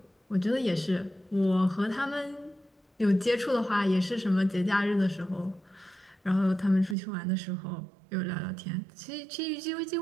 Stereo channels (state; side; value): drops out; left; at 7.0 s